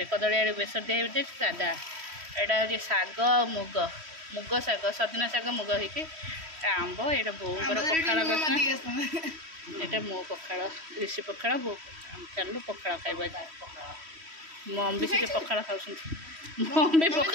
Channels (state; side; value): late; left; 3.1 ms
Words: कदली आलू बेसर दे सादा एटा हूँ शाग मुग मुग शाग सजना शाग मुग होगी आंब एटा बोर पखाड़ ଏଇଟା ମୋ ପଖାଳ ଋଷି ପଖାଳ ବୋଉ ଚାଲୁ ପଖାଳ ଖାଇବା ମମ୍ ବି ସେଠି ପଖାଳ ଖାଉଛନ୍ତି ମମ୍ ବି